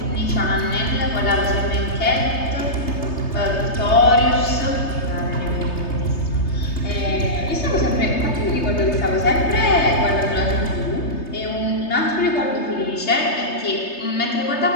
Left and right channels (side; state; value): right; late; 3.3 ms